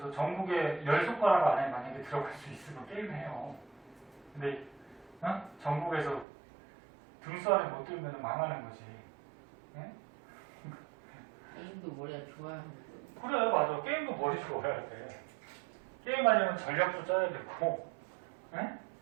전국에 10손가락 안에 만약에 들어갈 수 있으면 게임해요. 근데 어? 전국에서 등수 안에 못 들면 망하는 거지. 네? 게임도 머리가 좋아야 하는데. 그래 맞아. 게임도 머리 좋아야 돼. 게임하려면 전략도 짜야 되고 네?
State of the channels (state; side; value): drops out; left; at 6.2 s